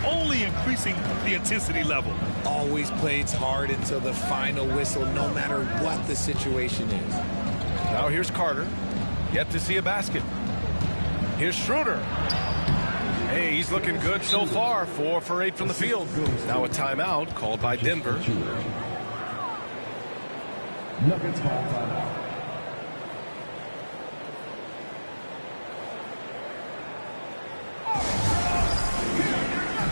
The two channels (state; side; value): inverted; both; correlation -1.00